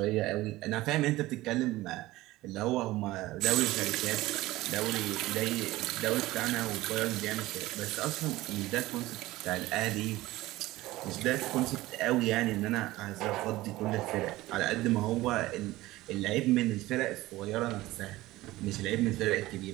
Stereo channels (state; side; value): quieter; left; 17.8 dB